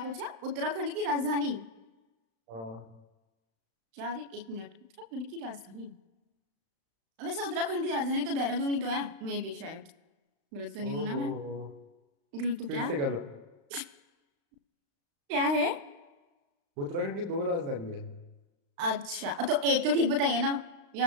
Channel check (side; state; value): left; late; 35 ms